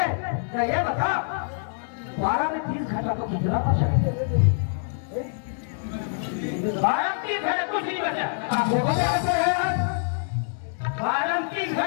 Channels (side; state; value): right; silent; digital silence